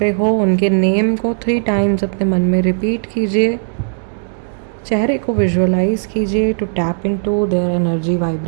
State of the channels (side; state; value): left; silent; digital silence